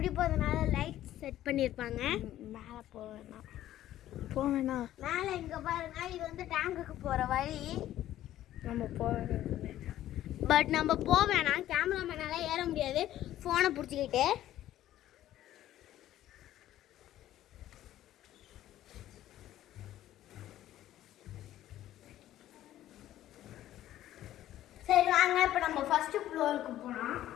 லைட் செட் பண்ணியிருப்பாங்க. மேலே போவேண்ணா மேலே இங்கே பாருங்க, இது வந்து டேங்குக்கு போகிற வழி. நம்ம போவேன், பட் நம்ம போவேணாம், கேமராமேனால ஏற முடியாது ஃபோனை பிடிச்சிக்கிட்டு. சரி வாங்க, இப்போ நம்ம ஃபர்ஸ்ட் ஃப்ளோருக்கு போனோம்.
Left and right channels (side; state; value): right; quieter; 13.2 dB